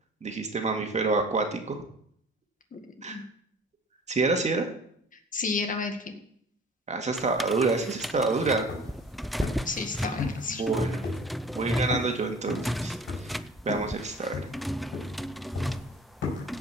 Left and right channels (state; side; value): normal; both; correlation 0.46